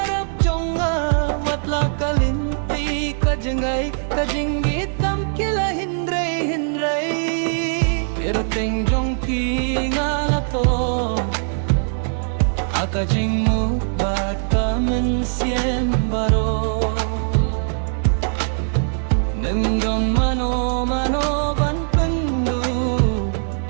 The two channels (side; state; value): left; silent; 58 dB below the other